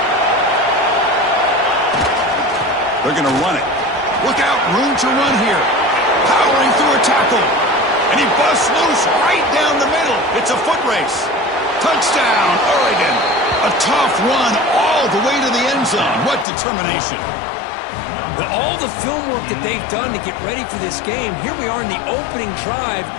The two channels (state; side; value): drops out; right; at 16.4 s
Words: They're going to run it. Look out, room to run here. Powering through a tackle. And he busts loose right down the middle. It's a foot race. Touchdown, Oregon. A tough run all the way to the end zone. What determination. With all the film work that they've done to get ready for this game, here we are in the opening drive.